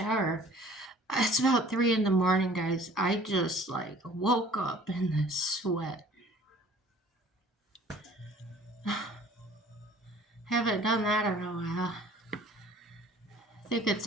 It's about 3 in the morning, guys. I just woke up in this sweat. Haven't done that in a while. I think it's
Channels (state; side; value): normal; both; correlation 0.51